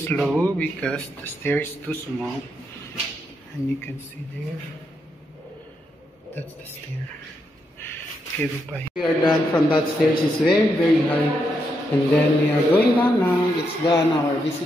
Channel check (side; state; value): both; normal; correlation 0.81